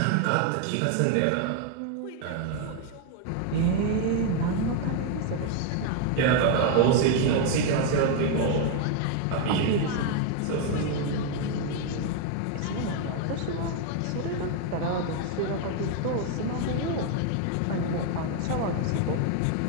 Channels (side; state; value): both; different; correlation 0.01